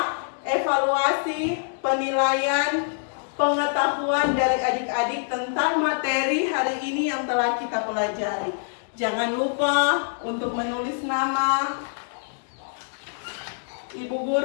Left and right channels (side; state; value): right; silent; digital silence